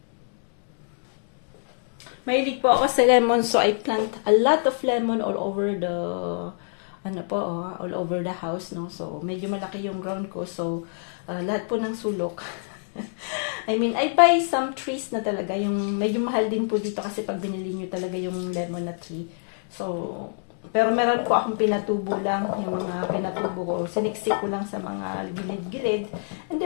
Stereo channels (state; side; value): silent; right; digital silence